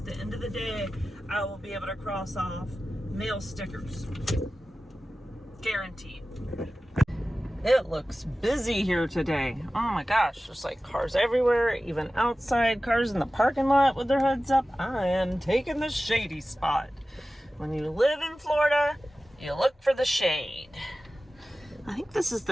the end of the day, I will be able to cross off mail stickers. Guaranteed. It looks busy here today. Oh my gosh, there's like cars everywhere, even outside, cars in the parking lot with their hoods up. I am taking the shady spot. When you live in Florida, you look for the shade. I think this is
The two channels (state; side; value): normal; both; correlation 0.95